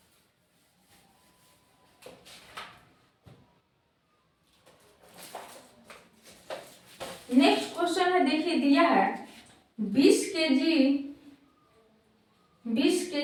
नेक्स्ट क्वेश्चन है, देखिए दिया है 20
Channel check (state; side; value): identical; both; correlation 1.00